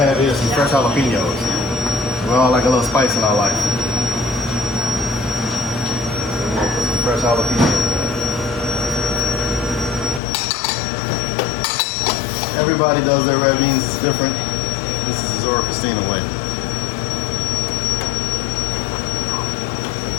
here is some fresh jalapenos. We all like a little spice in our life. We're going to put some fresh jalapenos. Everybody does their red beans, it's different. This is the Zora Christina way.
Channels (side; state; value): right; drops out; at 10.2 s